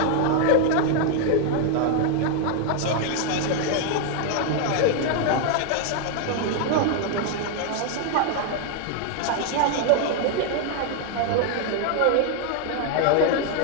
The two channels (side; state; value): both; different; correlation 0.00